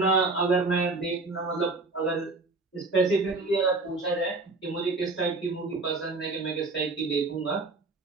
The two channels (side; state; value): left; quieter; 3.5 dB